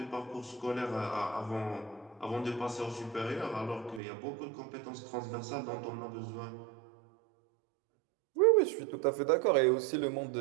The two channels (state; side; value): drops out; left; at 4.0 s